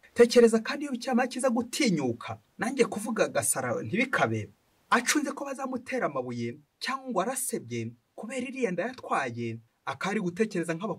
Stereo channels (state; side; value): identical; both; correlation 1.00